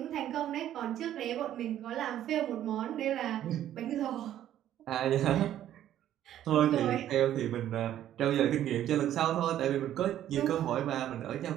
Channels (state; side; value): quieter; left; 11.7 dB